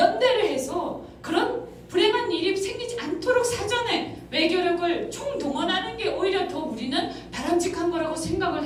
해서 그런 불행한 일이 생기지 않도록 사전에 외교력을 총동원하는 게 오히려 더 우리는 바람직한 거라고 생각을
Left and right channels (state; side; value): identical; both; correlation 1.00